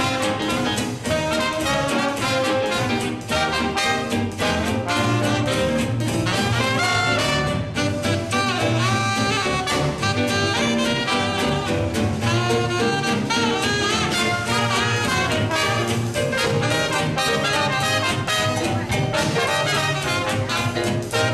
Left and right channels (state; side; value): identical; both; correlation 1.00